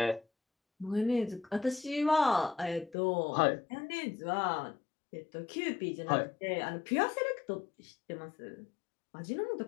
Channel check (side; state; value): right; drops out; at 3.0 s